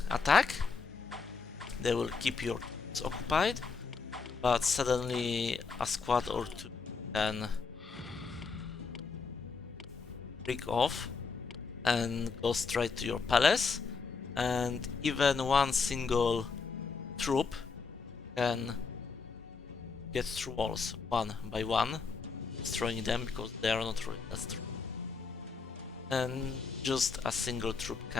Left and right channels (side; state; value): right; quieter; 5.0 dB